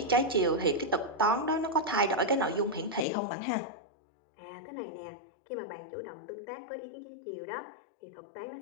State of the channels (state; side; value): drops out; right; at 3.1 s